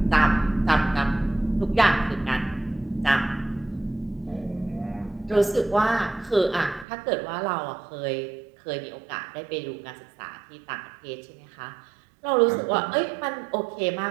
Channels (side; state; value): left; drops out; at 6.9 s